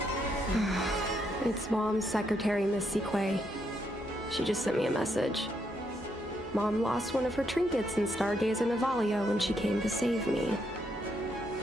It's Mom's secretary, Miss Siquei. She just sent me a message. Mom lost one of her trinkets in Stargazer Navalia when she came to save me.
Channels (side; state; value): both; normal; correlation 0.77